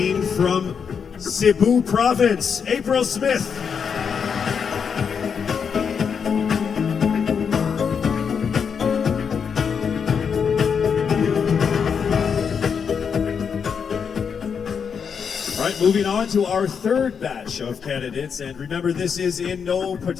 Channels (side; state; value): right; quieter; 6.6 dB